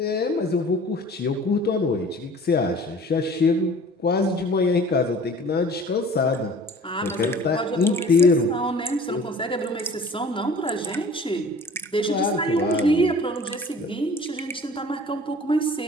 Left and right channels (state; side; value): normal; both; correlation 0.47